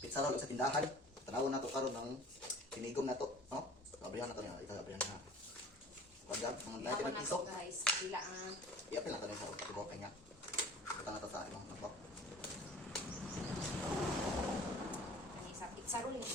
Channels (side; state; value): both; normal; correlation 0.45